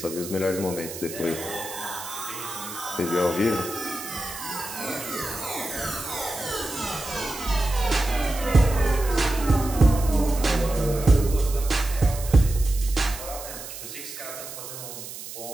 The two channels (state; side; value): noise; right; hiss, 11 dB below the sound